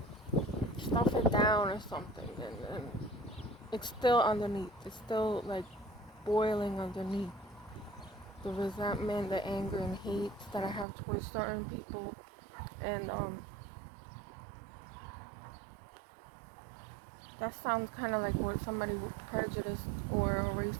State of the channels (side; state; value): left; drops out; at 10.9 s